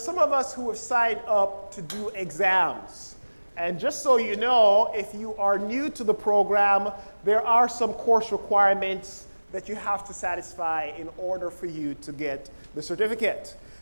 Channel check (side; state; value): both; inverted; correlation -1.00